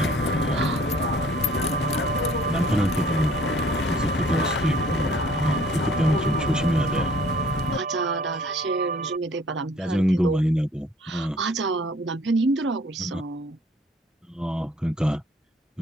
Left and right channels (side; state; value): both; normal; correlation 0.56